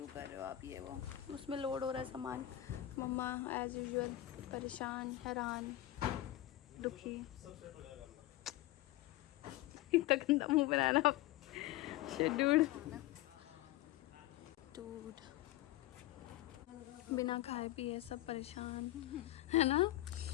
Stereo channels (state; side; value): quieter; right; 15.4 dB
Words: कर रहे हो आप, ये वो। उसमें लोड हो रहा है सामान। मम्मा एज यूजुअल परेशान, हैरान, दुखी। इतना गंदा मुंह बनाना डूड बिना खाए पिए सब परेशान है ना।